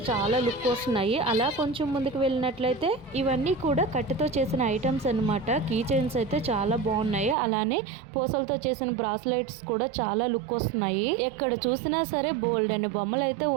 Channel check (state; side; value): drops out; left; at 7.4 s